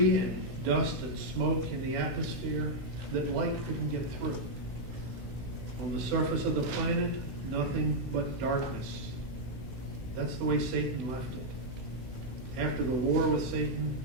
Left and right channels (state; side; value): late; left; 16 ms